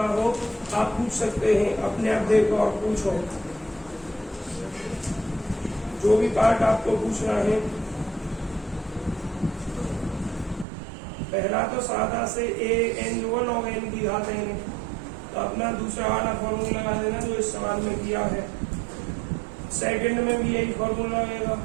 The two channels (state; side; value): drops out; left; at 10.7 s